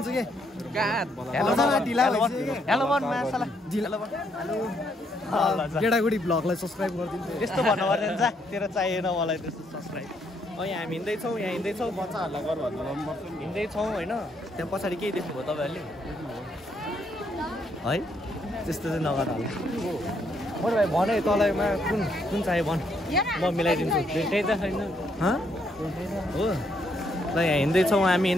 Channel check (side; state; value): both; normal; correlation 0.73